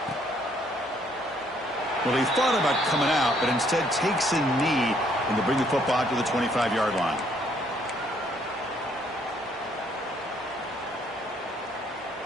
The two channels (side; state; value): both; normal; correlation 0.66